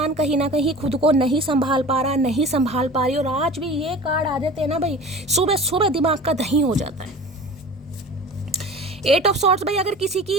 कहीं ना कहीं खुद को नहीं संभाल पा रहा, नहीं संभाल पा रही। और आज भी ये कार्ड आ जाते हैं ना भाई, सुबह सुबह दिमाग का दही हो जाता है। 8 ऑफ सॉर्ड्स भाई, अगर किसी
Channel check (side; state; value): both; normal; correlation 0.39